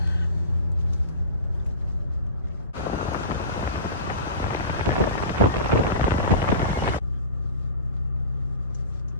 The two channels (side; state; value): both; inverted; correlation -0.31